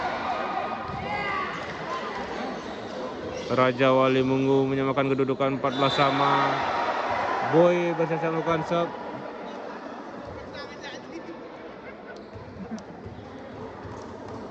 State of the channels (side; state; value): both; identical; correlation 1.00